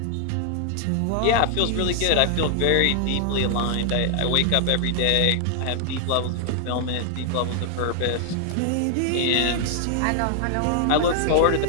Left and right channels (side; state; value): both; different; correlation 0.00